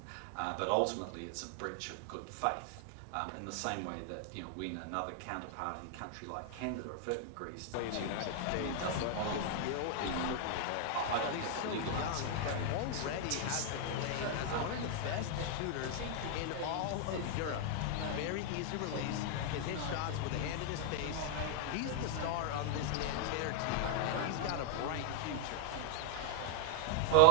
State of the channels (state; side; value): different; both; correlation -0.01